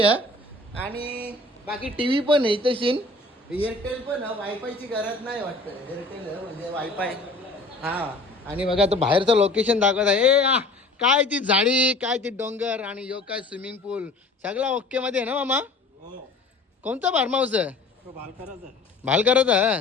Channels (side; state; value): right; quieter; 3.0 dB